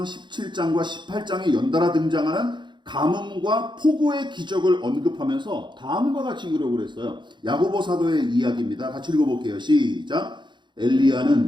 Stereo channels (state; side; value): late; left; 0.22 ms